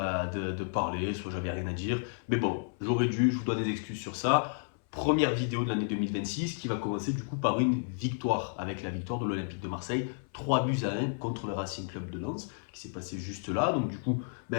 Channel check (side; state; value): right; silent; 57 dB below the other